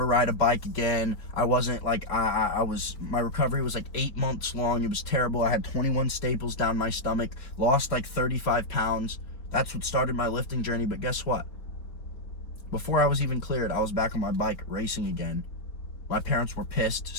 ride a bike again. I wasn't like, my recovery was like 8 months long. It was terrible. I had 21 staples down my stomach, lost like 35 pounds. That's what started my lifting journey. But guess what? Before I was even cleared, I was back on my bike racing again. My parents were pissed,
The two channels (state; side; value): late; right; 4.5 ms